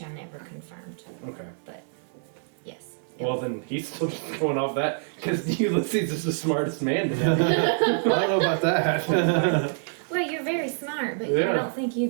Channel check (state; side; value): silent; left; digital silence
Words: I never confirmed. Okay. But yes. Well, then he's still just going off that because Ulysses is the smartest man in that. I don't know about that. Well, you're very smart. smart, but Yeah. I don't think you